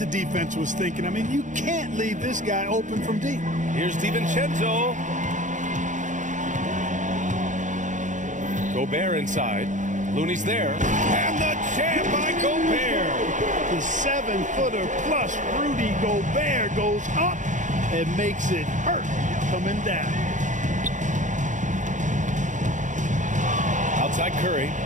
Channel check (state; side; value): late; left; 0.36 ms